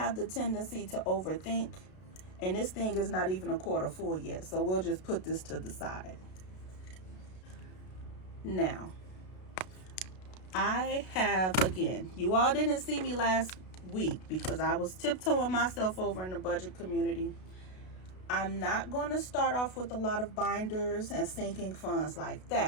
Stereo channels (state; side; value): late; right; 32 ms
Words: the tendency to overthink, and this thing is not even a quarter full yet, so we'll just put this to the side. Now, I have, again, you all didn't see me last week because I was tiptoeing myself over in the budget community. I'm not going to start off with a lot of binders and sinking funds like